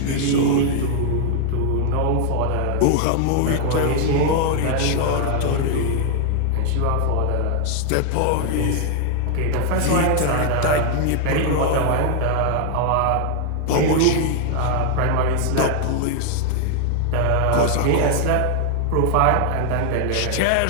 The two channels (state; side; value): different; both; correlation 0.00